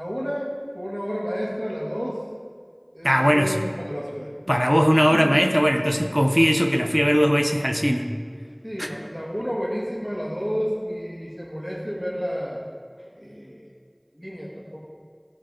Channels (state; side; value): identical; both; correlation 1.00